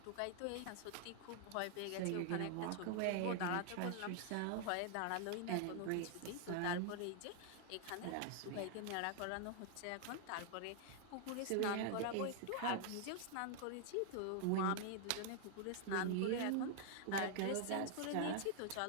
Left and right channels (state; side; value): different; both; correlation 0.00